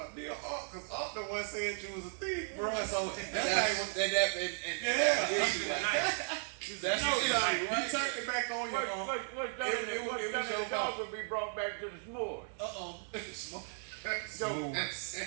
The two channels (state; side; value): silent; left; 54 dB below the other